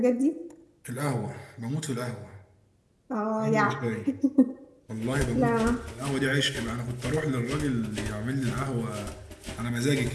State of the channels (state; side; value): identical; both; correlation 1.00